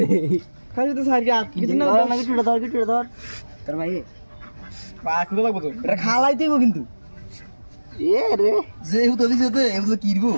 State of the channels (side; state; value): both; inverted; correlation -1.00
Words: খালি তো সাইজ আট কিছু না কিছু ধর তোর ভাই পাকুড়ো লাগবো তো এটা খালাই দিব কিন্তু এ রে যে হুতো দিছে তো এমন তো কিরবো